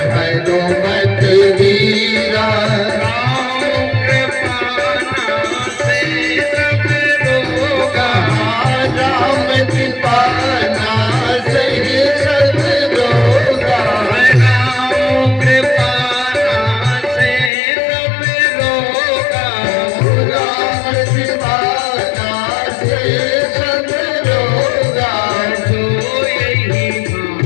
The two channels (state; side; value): drops out; right; at 17.5 s